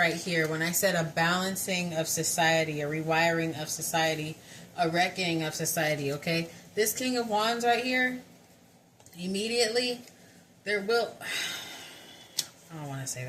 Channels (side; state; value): both; identical; correlation 1.00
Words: here, when I said a balancing of society, a rewiring of society, a reckoning of society, okay? This King of Wands right here, immediately, there will... I don't want to say